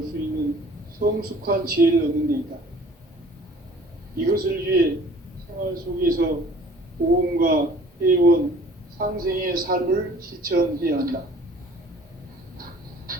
수 있는 성숙한 지혜를 얻는 데 있다. 이것을 위해 생활 속에서 보험과 회원, 상생의 삶을 실천해야 한다.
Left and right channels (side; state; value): both; normal; correlation 0.51